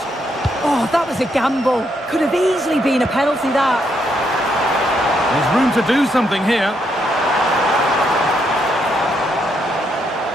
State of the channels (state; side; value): normal; both; correlation 0.76